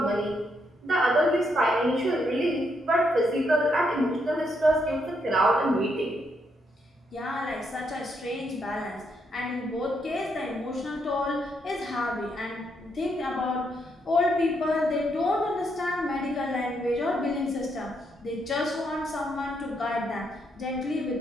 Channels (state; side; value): normal; both; correlation 0.77